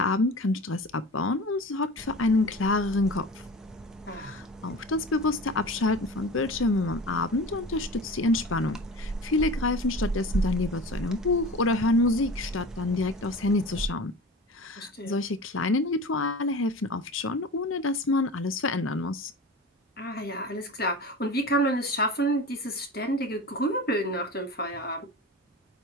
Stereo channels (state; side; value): normal; both; correlation 0.35